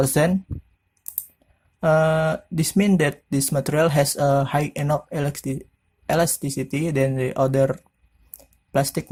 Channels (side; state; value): both; identical; correlation 1.00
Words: This means that this material has a high enough elasticity than the other plastic